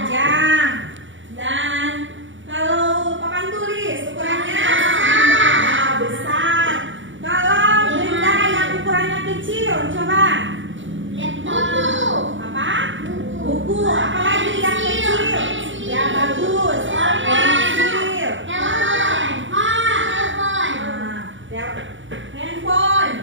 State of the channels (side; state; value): left; late; 0.56 ms